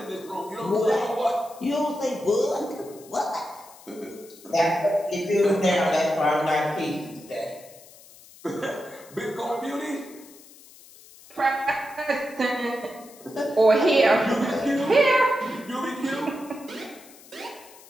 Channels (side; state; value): left; noise; hiss, 22 dB below the sound